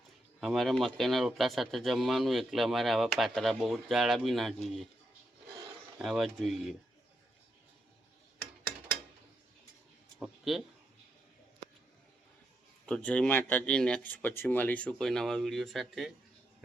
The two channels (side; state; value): both; normal; correlation 0.82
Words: અમારે મકાઈના રોટલા સાથે જમવાનું એટલે અમારે આવા પાતળા બહુ જાડા બી ના જોઈએ, આવા જ જોઈએ. ઓકે, તો જય માતાજી. નેક્સ્ટ પછી મળીશું કોઈ નવા વિડીયો સાથે.